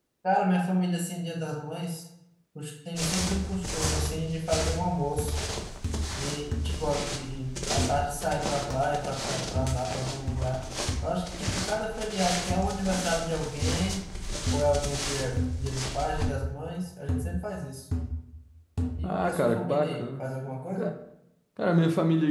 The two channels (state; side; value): identical; both; correlation 1.00